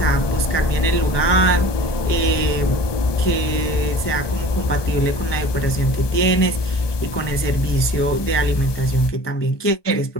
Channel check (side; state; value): right; late; 1.2 ms